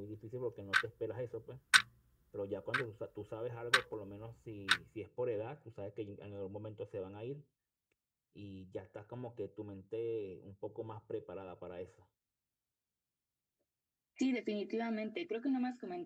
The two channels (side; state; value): both; identical; correlation 1.00